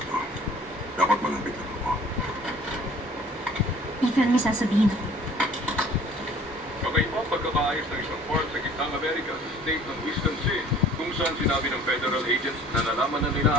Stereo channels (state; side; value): normal; both; correlation 0.51